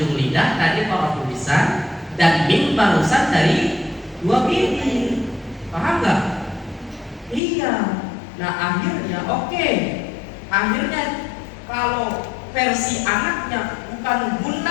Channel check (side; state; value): right; drops out; at 7.4 s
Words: lidah tadi para tulisan, dan mim barusan dari dua bibir. Paham nggak? Iya. Nah akhirnya akhirnya kalau versi anaknya bukan